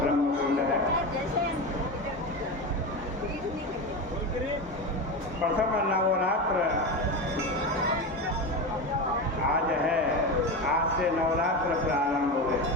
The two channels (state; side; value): normal; both; correlation 0.21